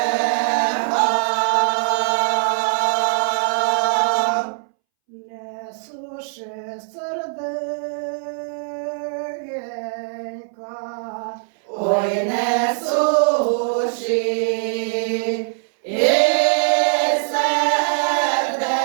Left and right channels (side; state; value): left; silent; 65 dB below the other